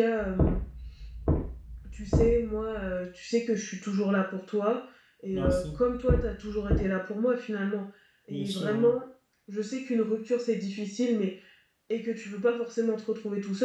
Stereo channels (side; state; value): both; identical; correlation 1.00